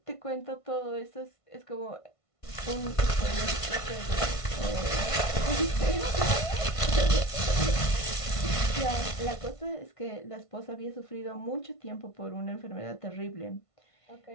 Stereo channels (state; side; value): late; right; 1.5 ms